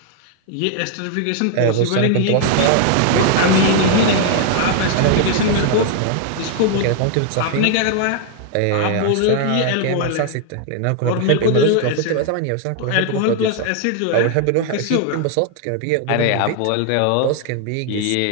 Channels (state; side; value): different; both; correlation 0.00